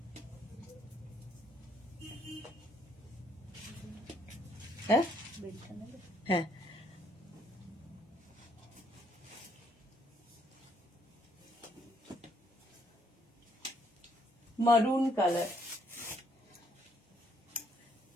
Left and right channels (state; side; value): normal; both; correlation 0.69